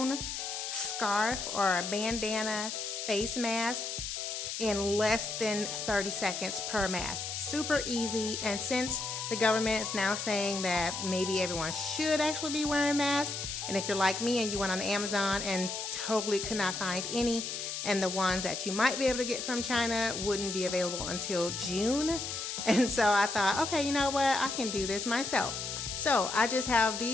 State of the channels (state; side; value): noise; left; hiss, 5 dB below the sound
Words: scarf or a bandana face mask in less than 30 seconds per mask. Super easy, and since the government is now saying that maybe everyone should actually be wearing masks, and if you're like me and you went on Amazon and totally could not find any, and the ones that you might be able to get from China wouldn't be available until June, and so I thought, okay, you know what, I can do this myself. So I just have